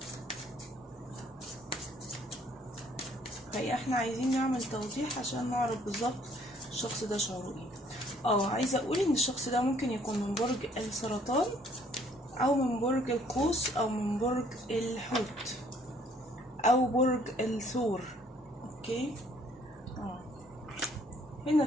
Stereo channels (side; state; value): both; normal; correlation 0.62